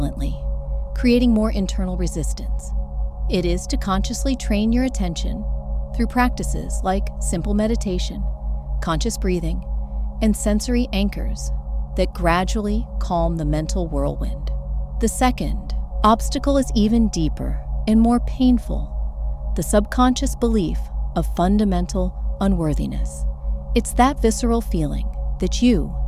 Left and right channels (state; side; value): identical; both; correlation 1.00